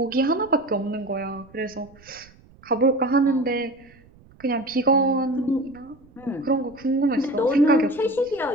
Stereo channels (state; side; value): noise; right; rumble, 26 dB below the sound